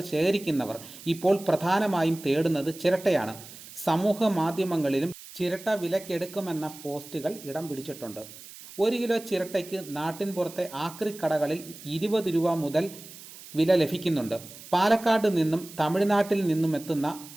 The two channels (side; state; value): right; noise; hiss, 17 dB below the sound